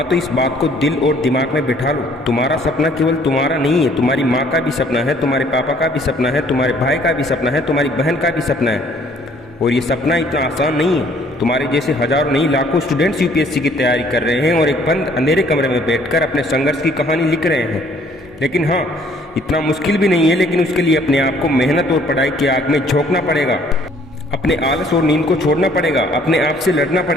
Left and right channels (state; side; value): normal; both; correlation 0.60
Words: तो इस बात को दिल और दिमाग में बिठा लो, तुम्हारा सपना केवल तुम्हारा नहीं है, तुम्हारी माँ का भी सपना है, तुम्हारे पापा का भी सपना है, तुम्हारे भाई का भी सपना है, तुम्हारी बहन का भी सपना है। और ये सपना इतना आसान नहीं है। तुम्हारे जैसे हजारों नहीं लाखों स्टूडेंट्स यूपीएससी की तैयारी कर रहे हैं और एक बंद अंधेरे कमरे में बैठकर अपने संघर्ष की कहानी लिख रहे हैं। लेकिन हाँ, इतना मुश्किल भी नहीं है, लेकिन उसके लिए अपने आप को मेहनत और पढ़ाई की आग में झोंकना पड़ेगा। अपने आलस और नींद को छोड़ना पड़ेगा, अपने आप से लड़ना